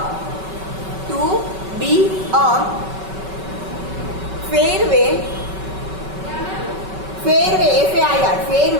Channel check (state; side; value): late; left; 5.3 ms